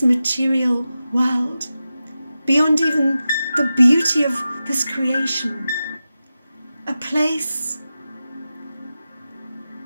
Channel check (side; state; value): both; inverted; correlation -0.92